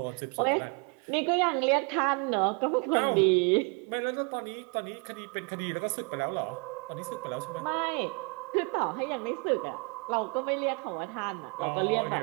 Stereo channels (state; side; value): quieter; left; 33.9 dB